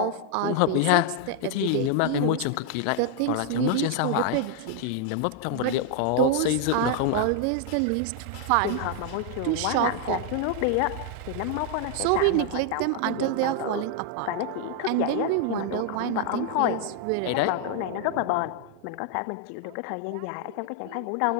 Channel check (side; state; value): both; different; correlation 0.00